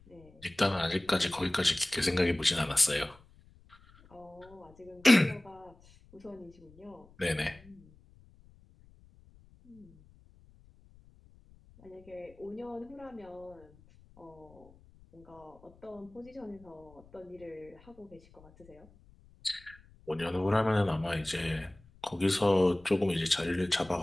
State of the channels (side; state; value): left; noise; rumble, 26 dB below the sound